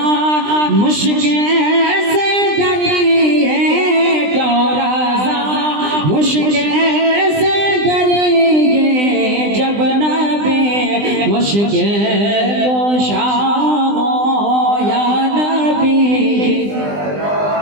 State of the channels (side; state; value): left; late; 20 ms